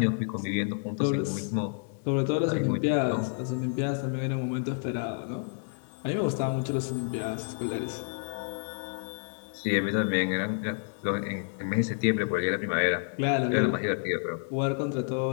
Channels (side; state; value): right; silent; 58 dB below the other